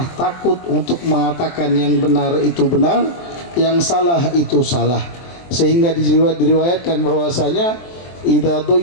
takut untuk mengatakan yang benar itu benar, yang salah itu salah, sehingga diriwayatkan bahwasanya idza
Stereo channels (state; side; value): late; right; 23 ms